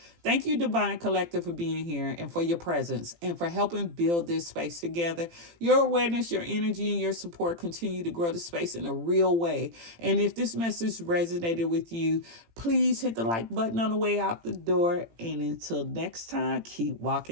Thank you, Divine Collective, for being here and for your presence and for helping build this space together. Your awareness, your energy, and your support continue to grow the space in a real way. And if this message resonated with you, please hit the like button on the way out the door. And until next time, keep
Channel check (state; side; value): late; left; 18 ms